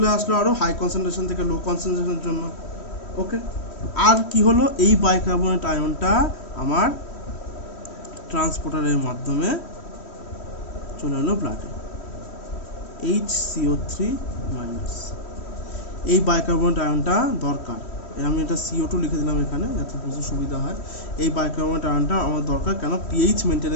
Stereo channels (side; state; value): right; late; 3.1 ms